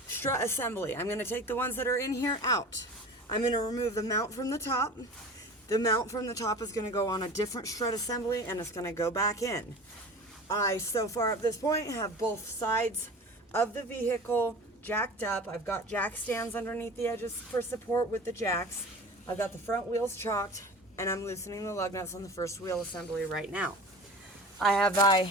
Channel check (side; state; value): both; normal; correlation 0.37